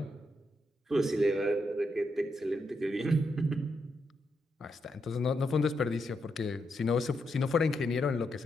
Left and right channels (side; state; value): both; normal; correlation 0.82